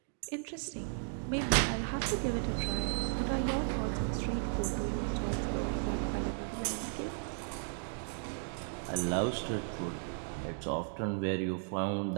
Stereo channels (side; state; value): left; silent; 54 dB below the other